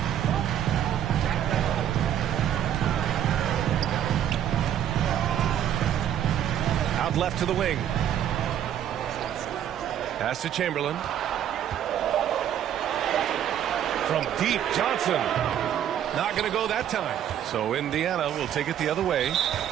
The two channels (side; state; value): left; quieter; 10.3 dB